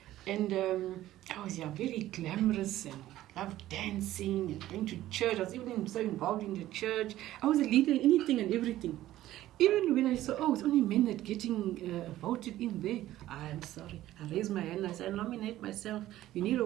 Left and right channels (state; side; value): quieter; left; 14.4 dB